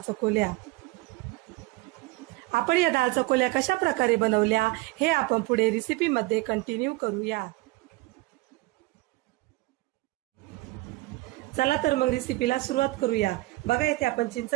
चकोल्या। आपण या डाळ चकोल्या कशा प्रकारे बनवल्या हे आपण पुढे रेसिपी मध्ये कंटिन्यू करूया। चला तर मग रेसिपीला सुरुवात करूया। बघा, इथे आपण चिंच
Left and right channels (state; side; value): quieter; left; 20.7 dB